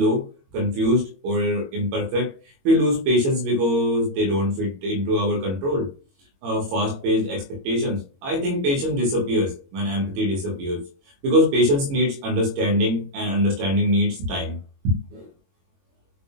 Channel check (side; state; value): left; late; 22 ms